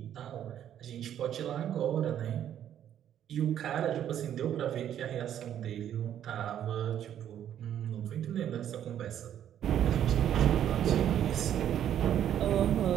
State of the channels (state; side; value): quieter; left; 10.4 dB